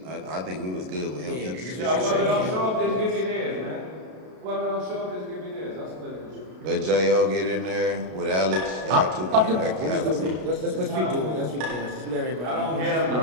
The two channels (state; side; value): late; left; 32 ms